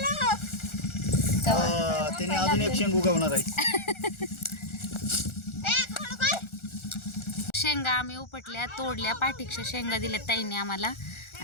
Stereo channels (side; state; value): right; late; 1.4 ms